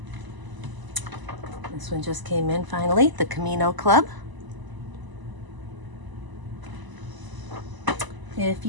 This one just came in finally, The Camino Club. If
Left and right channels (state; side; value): late; left; 1.0 ms